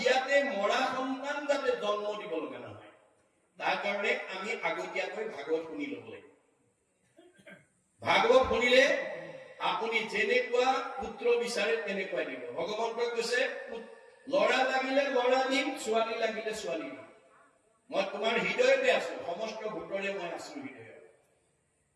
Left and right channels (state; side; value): identical; both; correlation 1.00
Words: মৰা সন্তান যাতে জন্ম দিব লগা নহয়, তাৰ কাৰণে আমি আগতীয়াকৈ ভাগৱত শুনি ল'ব লাগিব। ভাগৱত শুনিলে আপুনি যেনেকুৱা পুত্ৰ বিচাৰে তেনেকুৱাই দিব। ভগৱন্তই কৈছে, ল'ৰা লাগিলে ল'ৰা দিম, ছোৱালী লাগিলে ছোৱালী দিম। মই তোমাৰ হৃদয়তে আছো, সমস্ত ভূতৰে মই আছো হৃদয়ত।